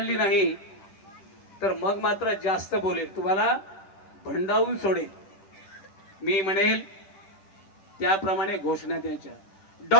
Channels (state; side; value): late; right; 10 ms